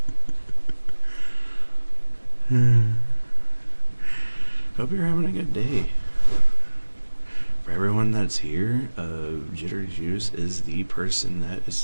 Hope you're having a good day. For everyone that's here, Jitter Juice is the person that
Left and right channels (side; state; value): both; inverted; correlation -1.00